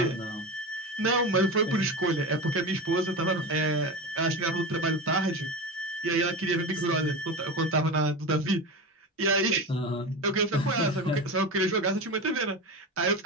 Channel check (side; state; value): both; normal; correlation 0.24